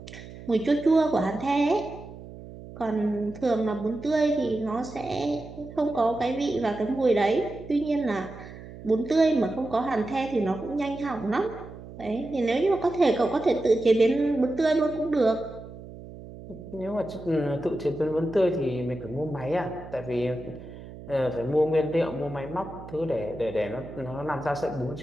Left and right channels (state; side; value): noise; right; hum, 15 dB below the sound